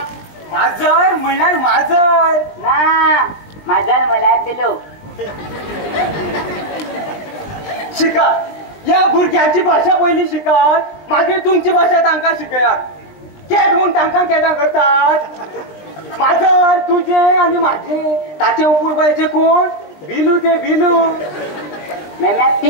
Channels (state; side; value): late; right; 20 ms